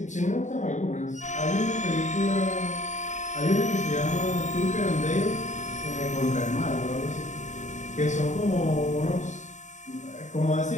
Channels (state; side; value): late; right; 0.35 ms